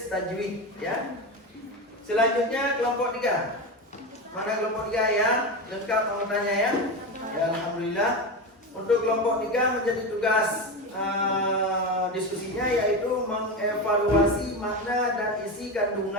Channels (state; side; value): normal; both; correlation 0.19